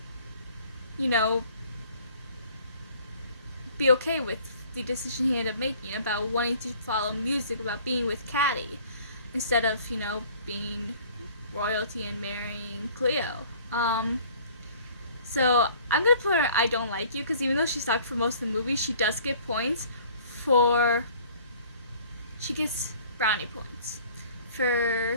you know, be okay with the decision he ended up making about wanting to follow music, about being with Caddy, instead of, you know, being royalty and marrying Cleo. So I'm gonna put her I Don't Like You, because even though she sucked for most of the movie, she does get points for, she gets brownie points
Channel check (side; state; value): both; inverted; correlation -0.53